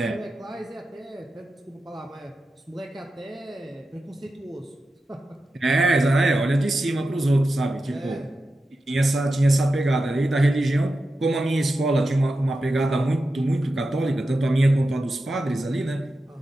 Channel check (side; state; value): both; normal; correlation 0.91